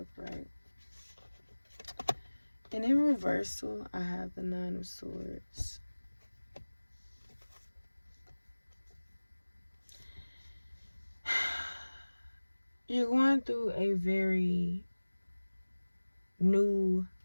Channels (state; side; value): inverted; both; correlation -1.00